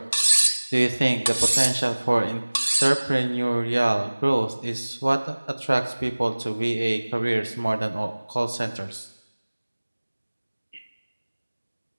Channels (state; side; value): inverted; both; correlation -1.00